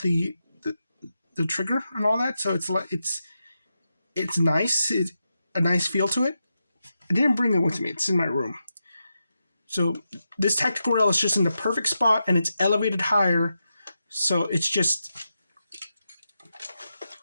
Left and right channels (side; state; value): both; inverted; correlation -0.87